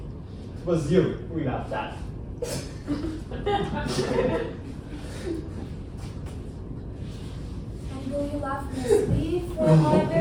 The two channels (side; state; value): both; identical; correlation 1.00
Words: was you we laughed at. And will you laugh in my sleep, for am I